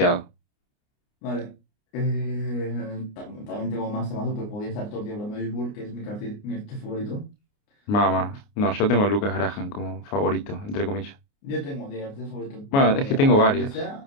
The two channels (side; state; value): right; late; 29 ms